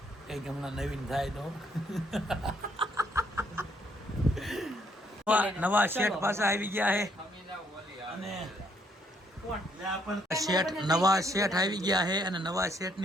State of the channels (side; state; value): both; normal; correlation 0.70